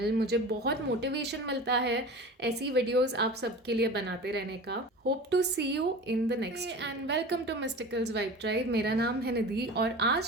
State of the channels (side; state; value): both; normal; correlation 0.35